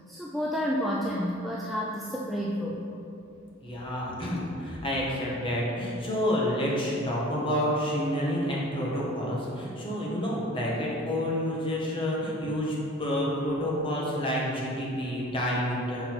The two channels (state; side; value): normal; both; correlation 0.47